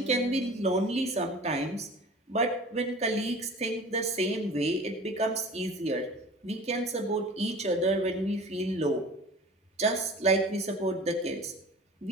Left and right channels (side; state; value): both; normal; correlation 0.41